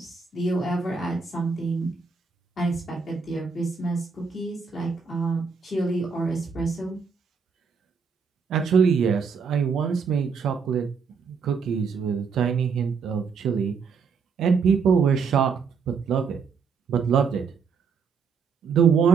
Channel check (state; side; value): quieter; left; 5.6 dB